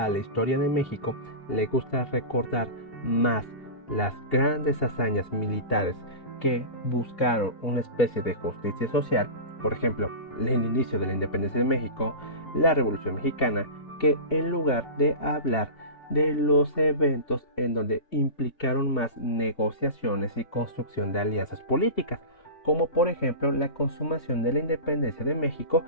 la historia de México le gusta recordar más las grandes hazañas militares que buscaron una especie de justicia social, por ejemplo, el inicio de la independencia de México, la Revolución Mexicana, que en lugar de hablar de los eventos en donde implicaron más negociaciones y construcción de alianzas políticas, como por ejemplo la consumación de la independencia de México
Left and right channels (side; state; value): right; late; 2.8 ms